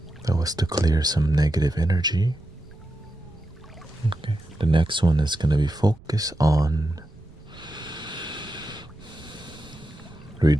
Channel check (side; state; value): right; noise; rumble, 22 dB below the sound